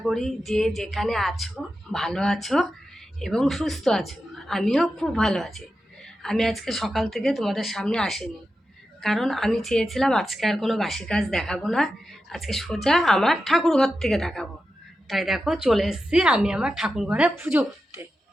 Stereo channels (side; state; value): both; normal; correlation 0.90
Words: করি যে যেখানে আছো ভালো আছো এবং সুস্থ আছো। আমিও খুব ভালো আছি। আমি আজকে সকাল থেকে তোমাদের সামনে আসিনি, কারণ আমি চেয়েছিলাম আজকে আর কোনো বাসি কাজ দেখাবো না, আজকে সোজা আমার ঠাকুর ঘর থেকে দেখাবো। তাই দেখো চলে এসেছি আমি আমার ঠাকুর ঘরে পুজো করতে।